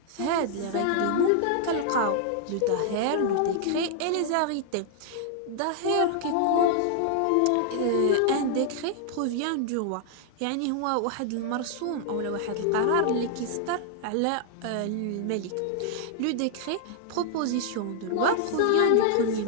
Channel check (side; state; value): both; different; correlation 0.00